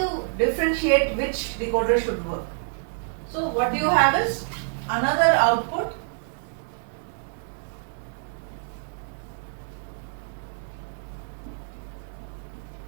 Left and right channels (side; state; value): left; silent; 60 dB below the other